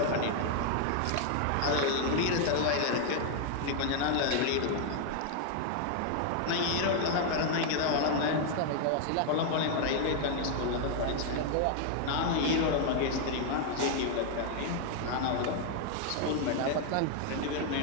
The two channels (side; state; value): both; different; correlation 0.00